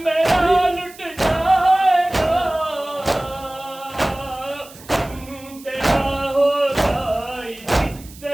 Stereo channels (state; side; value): noise; right; hiss, 20 dB below the sound